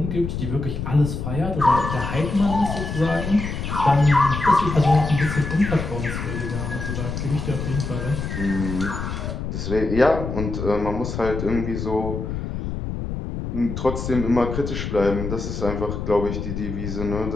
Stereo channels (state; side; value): noise; left; rumble, 5 dB below the sound